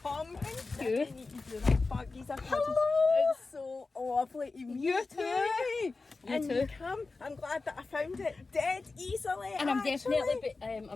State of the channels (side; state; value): right; quieter; 3.8 dB